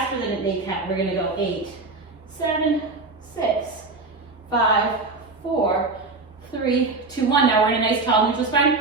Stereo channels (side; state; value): left; quieter; 3.6 dB